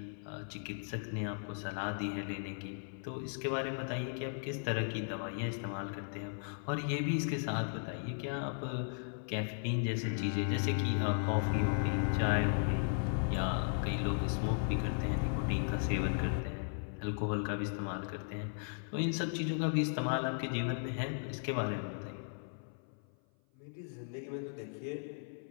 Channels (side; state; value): right; silent; 53 dB below the other